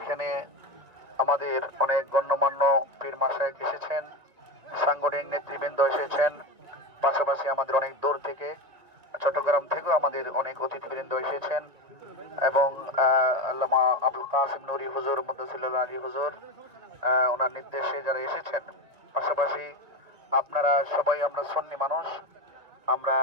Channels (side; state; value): left; late; 2.0 ms